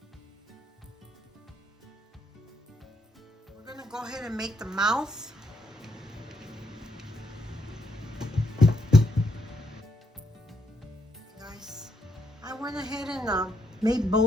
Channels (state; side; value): normal; both; correlation 0.77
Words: We're going to go ahead and make the mouth. Guys, I went ahead and made